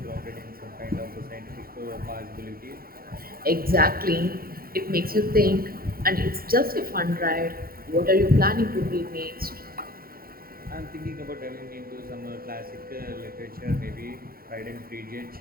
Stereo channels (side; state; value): left; late; 0.43 ms